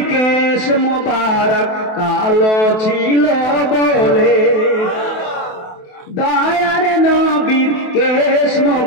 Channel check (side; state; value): right; late; 28 ms